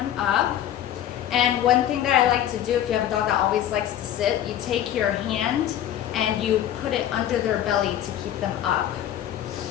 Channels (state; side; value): quieter; right; 11.4 dB